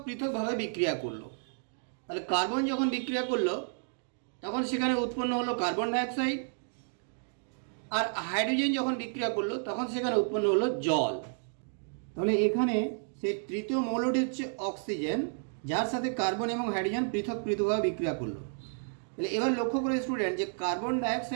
পৃথকভাবে বিক্রিয়া করলো। তাহলে কার্বন যখন বিক্রিয়া করলো তখন সেখানে উৎপন্ন হলো কার্বন ডাইঅক্সাইড, আর হাইড্রোজেন যখন বিক্রিয়া করলো তখন সেখানে উৎপন্ন হলো জল। তাহলে এখানে সেই তৃতীয় মৌলটি হচ্ছে অক্সিজেন, যার সাথে কার্বন এবং হাইড্রোজেন পৃথক পৃথকভাবে বিক্রিয়া করলো। তাহলে এবার লক্ষ্য করে স্টুডেন্ট যে কার্বন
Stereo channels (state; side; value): silent; left; digital silence